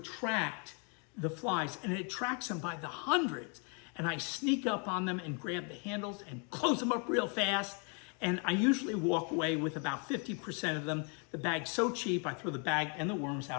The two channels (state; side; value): quieter; right; 37.5 dB